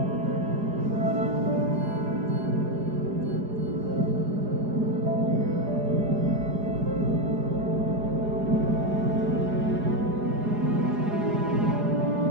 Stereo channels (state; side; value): late; left; 4.9 ms